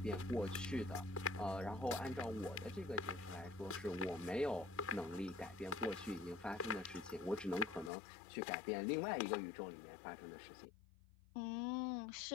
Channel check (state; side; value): drops out; right; at 7.9 s